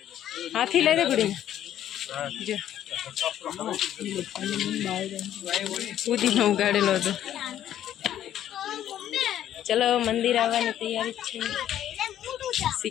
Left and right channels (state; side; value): quieter; right; 11.3 dB